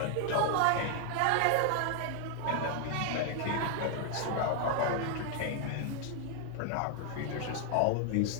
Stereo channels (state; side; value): different; both; correlation 0.00